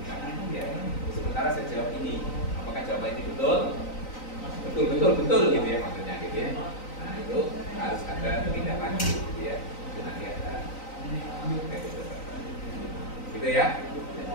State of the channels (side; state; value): right; late; 3.9 ms